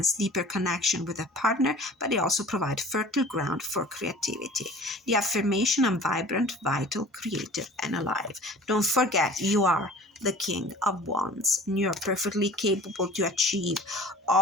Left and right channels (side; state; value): both; normal; correlation 0.44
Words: deeper connection with a partner, but they also provide fertile ground for creativity. The affirmation: I'm vibrant, vital, creative, and alive. Don't forget, you are the King of Wands, and you are perfectly capable to achieve